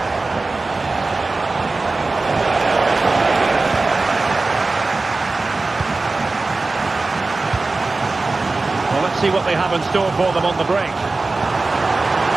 Well, let's see what they have in store for them on the break.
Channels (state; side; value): quieter; left; 3.5 dB